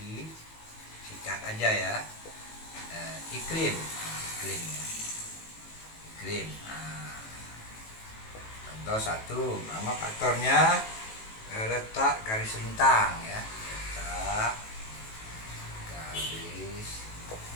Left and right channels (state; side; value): late; right; 18 ms